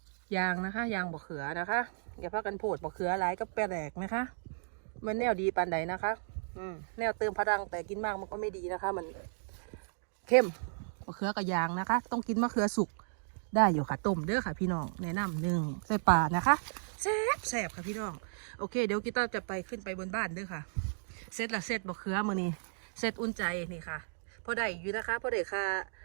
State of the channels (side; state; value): left; silent; digital silence